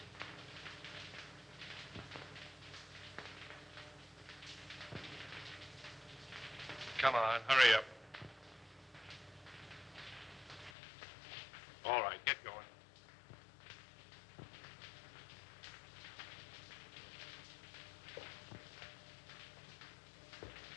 Come on, hurry up. All right, get going.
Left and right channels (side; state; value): right; drops out; at 10.7 s